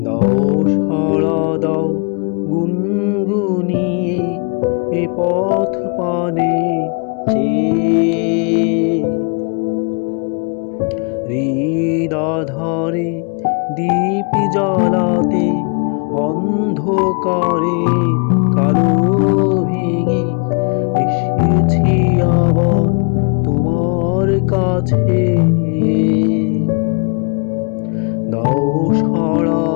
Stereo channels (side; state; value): right; quieter; 37.2 dB